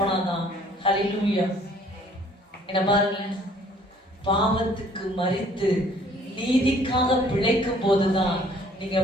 ஹல்லேலூயா. என்ன பாருங்க, பாவத்துக்கு மரித்து நீதிக்காக பிழைக்கும் போதுதான் நீங்க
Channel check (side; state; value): both; normal; correlation 0.58